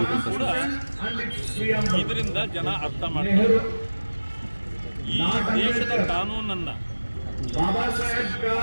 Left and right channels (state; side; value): inverted; both; correlation -1.00